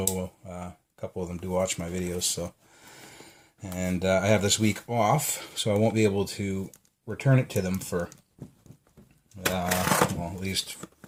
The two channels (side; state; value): both; identical; correlation 1.00